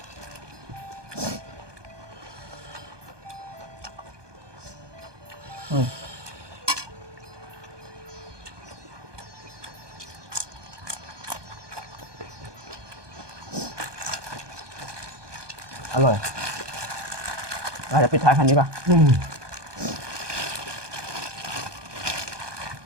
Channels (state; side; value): late; left; 1.2 ms